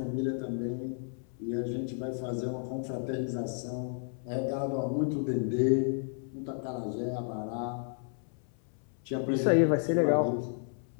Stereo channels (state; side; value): silent; right; 56 dB below the other